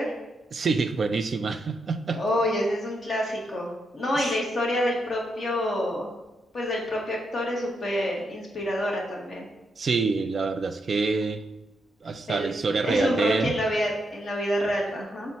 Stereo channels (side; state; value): both; normal; correlation 0.81